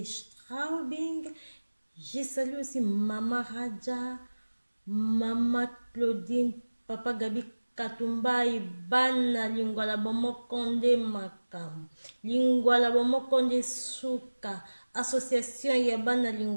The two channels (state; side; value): inverted; both; correlation -1.00